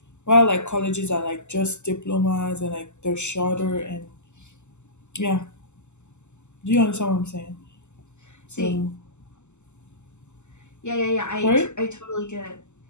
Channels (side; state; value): right; late; 0.83 ms